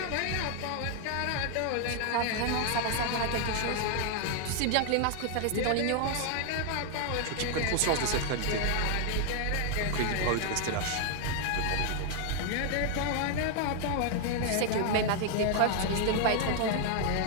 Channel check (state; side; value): different; both; correlation 0.00